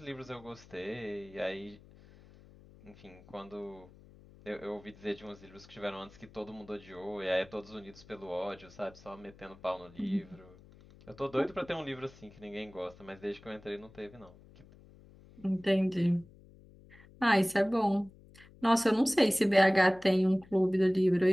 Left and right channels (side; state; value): left; noise; hum, 23 dB below the sound